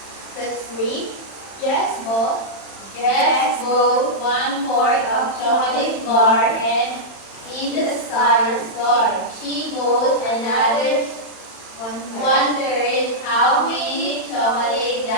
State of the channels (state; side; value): late; right; 31 ms